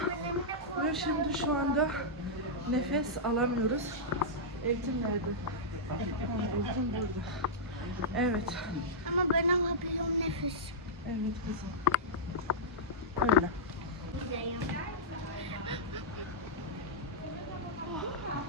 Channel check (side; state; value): both; normal; correlation -0.11